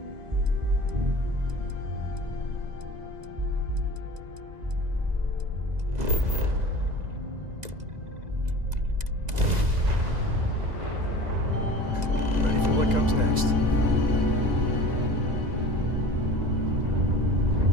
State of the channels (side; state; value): left; late; 2.0 ms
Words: Ready for what comes next.